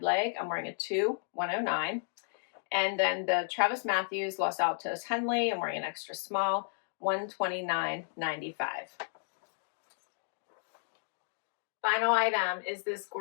leg, I'm wearing a 2, $109. And then the Travis Matthews Los Altos Henley, I'm wearing an extra small, $129.95. Final item is this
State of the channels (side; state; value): right; silent; digital silence